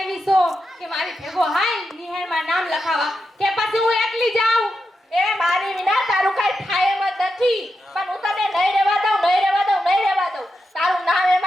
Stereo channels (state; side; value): normal; both; correlation 0.87